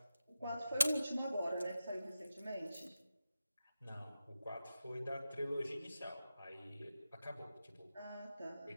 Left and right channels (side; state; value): both; inverted; correlation -0.92